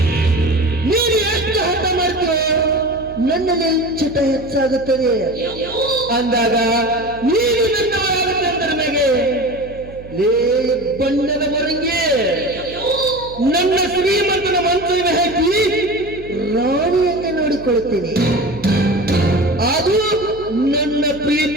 ನೀನು ಎಷ್ಟು ಹಠ ಮಾಡ್ತೀವೋ ನನ್ನಲ್ಲಿ ಚಟ ಹೆಚ್ಚಾಗುತ್ತದೆ. ಅಂದಾಗ ನೀನು ನನ್ನವರಾಗುತ್ತೆ ಅಂತ ನನಗೆ ಲೇ ಬಣ್ಣದ ಮೊರಂಗಿ ನನ್ನ ಶ್ರೀಮಂತನ ಮನಸ್ಸಿಗೆ ಹಾಕಿ ರಾಣಿಯಂತೆ ನೋಡಿಕೊಳ್ಳುತ್ತೇನೆ. ಅದು ನನ್ನ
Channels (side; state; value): right; noise; hum, 17 dB below the sound